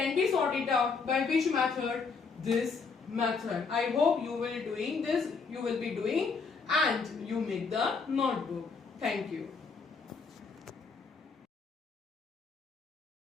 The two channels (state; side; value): quieter; right; 4.9 dB